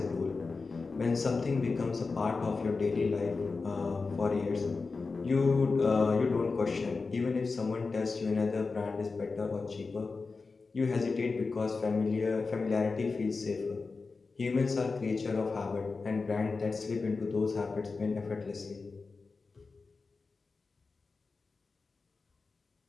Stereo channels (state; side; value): quieter; right; 4.2 dB